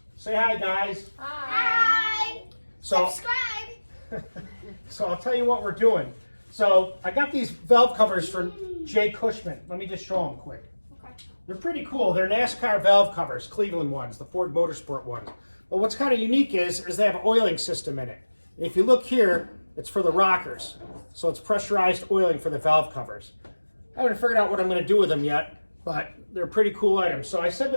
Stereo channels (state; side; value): inverted; both; correlation -1.00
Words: Say hi, guys. Hi. So, Subscribe. so I'll tell you what we're doing. So I got these valve covers from Jay Cushman. Let me just show them quick. Okay. They're pretty cool. They're NASCAR valve covers, Cleveland ones, the Ford Motorsport ones. But what's kind of unique is they have an oiling system in it. And if you look here, it's for the rockers. So it's pressurized oiling for the valve covers. I haven't figured out what I'm going to do with them yet, but they're pretty cool items. So I said